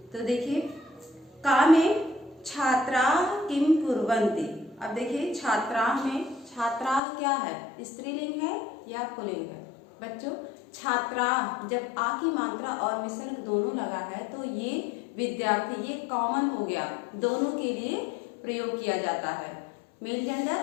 तो देखिए, का में छात्राः किम कुर्वन्ति। अब देखिए, छात्राः में छात्राः क्या है, स्त्रीलिंग है या पुल्लिंग है? बच्चों, छात्राः जब आ की मात्रा और विसर्ग दोनों लगा है तो ये विद्यार्थी, ये कॉमन हो गया, दोनों के लिए प्रयोग किया जाता है, मेल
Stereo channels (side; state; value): right; drops out; at 7.0 s